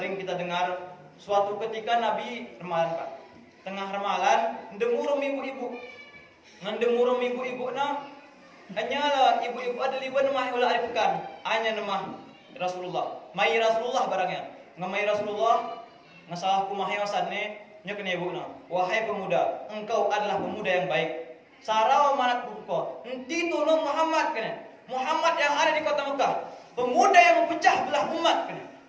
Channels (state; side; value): identical; both; correlation 1.00